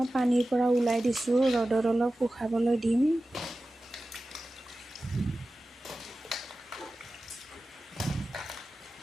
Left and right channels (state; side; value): normal; both; correlation 0.95